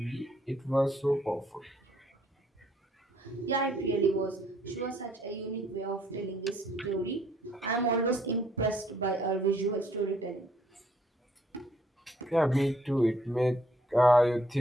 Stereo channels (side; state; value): both; normal; correlation 0.66